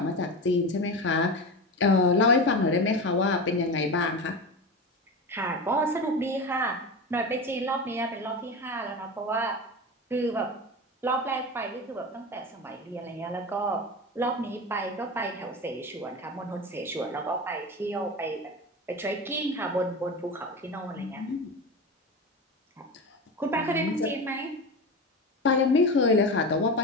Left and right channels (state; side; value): normal; both; correlation 0.25